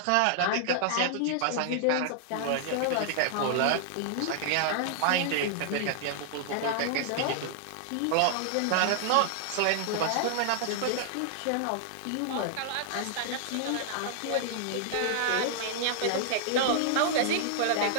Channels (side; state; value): both; different; correlation -0.01